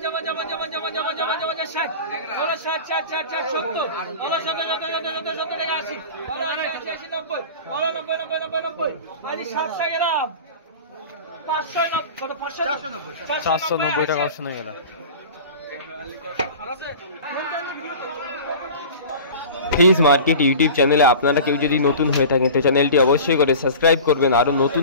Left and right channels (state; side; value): inverted; both; correlation -0.36